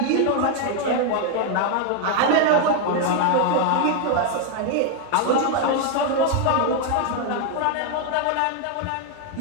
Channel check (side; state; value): both; different; correlation 0.01